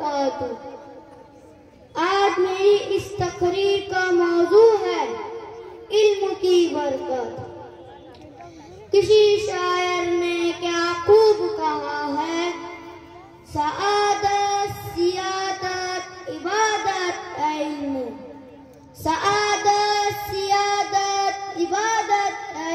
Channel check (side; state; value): both; identical; correlation 1.00